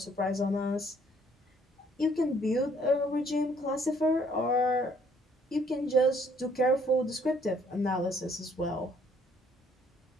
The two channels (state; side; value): normal; both; correlation 0.63